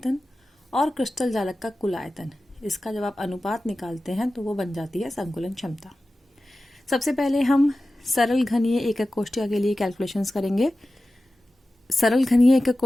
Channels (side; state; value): both; normal; correlation 0.95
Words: और क्रिस्टल जालक का कुल आयतन, इसका जब आप अनुपात निकालते हैं तो वो बन जाती है संकुलन क्षमता। सबसे पहले हम सरल घनीय एकक कोष्ठिका के लिए कैलकुलेशंस करेंगे। सरल घनीय एकक